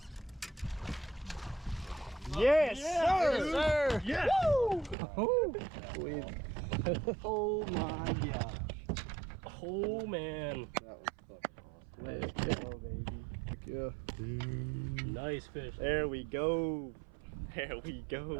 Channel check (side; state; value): left; drops out; at 5.0 s